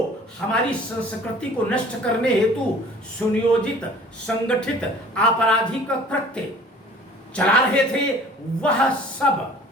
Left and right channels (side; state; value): both; normal; correlation 0.49